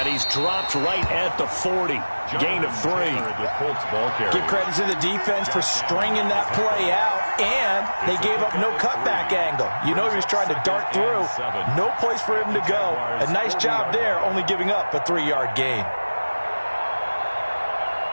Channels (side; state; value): both; inverted; correlation -1.00